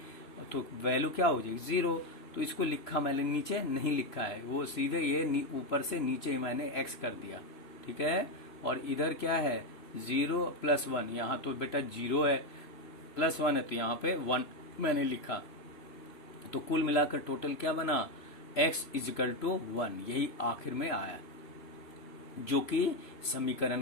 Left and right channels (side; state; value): right; late; 3.0 ms